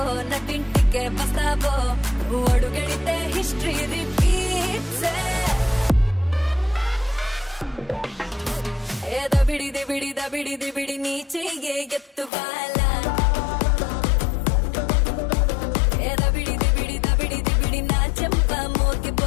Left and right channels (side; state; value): right; drops out; at 12.3 s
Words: నటింటికే బస్తావో అడుగెడితే హిస్టరీ రిపీట్స్ ఏ దబిడి దిబిడి దబిడి దిబిడి నీ చెయ్యే ఎత్తువాలా ఏ దబిడి దిబిడి దబిడి దిబిడి నా చెంప